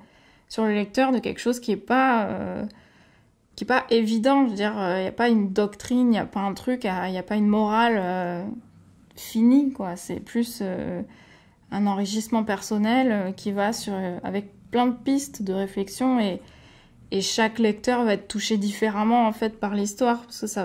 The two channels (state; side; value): identical; both; correlation 1.00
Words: sur le lecteur de quelque chose qui est pas évident. Je veux dire, il n'y a pas une doctrine, il n'y a pas un truc, il n'y a pas une morale finie, quoi. C'est plus un enrichissement personnel qui va avec plein de pistes de réflexion et chaque lecteur va être touché différemment en fait par l'histoire parce que ça